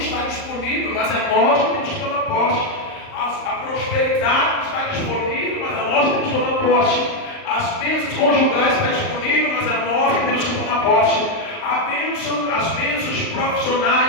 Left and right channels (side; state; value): right; late; 38 ms